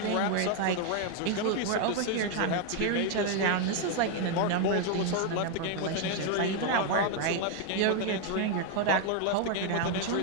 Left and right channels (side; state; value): both; different; correlation 0.00